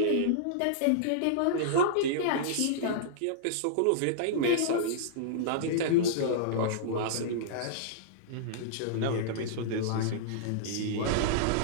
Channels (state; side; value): different; both; correlation -0.02